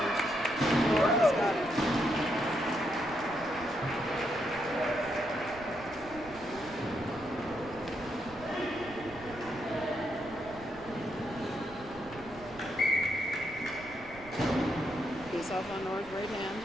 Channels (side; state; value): right; noise; rumble, 18 dB below the sound